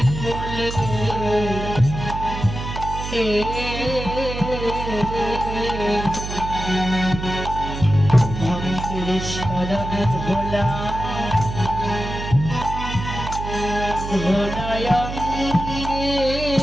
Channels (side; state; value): right; noise; hum, 6 dB below the sound